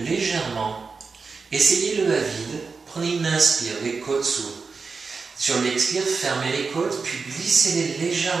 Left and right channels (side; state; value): left; quieter; 4.7 dB